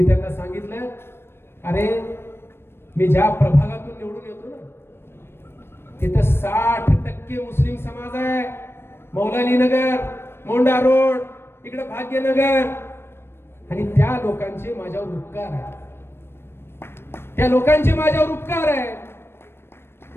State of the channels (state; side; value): late; right; 0.12 ms